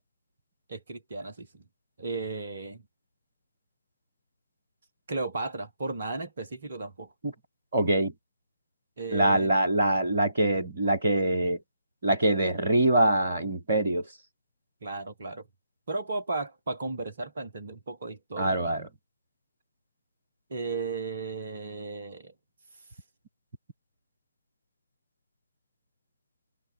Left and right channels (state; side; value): inverted; both; correlation -0.76